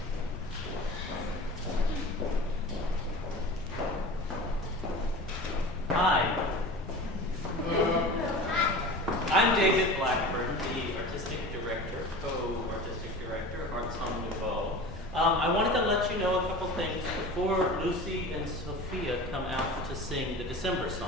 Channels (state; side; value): noise; left; rumble, 14 dB below the sound